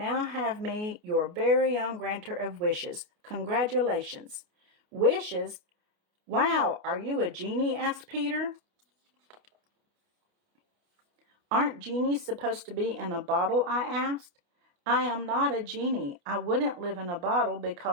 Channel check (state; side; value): late; left; 29 ms